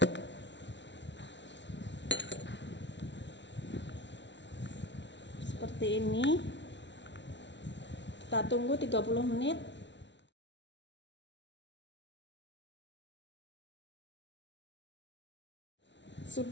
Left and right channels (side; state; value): right; late; 0.52 ms